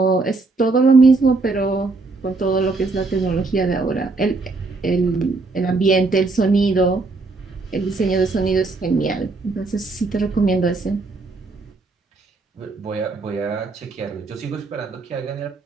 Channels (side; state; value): left; quieter; 3.6 dB